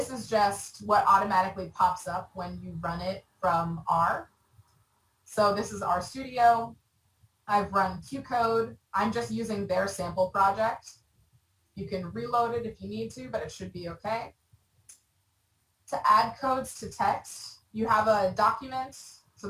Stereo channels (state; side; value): identical; both; correlation 1.00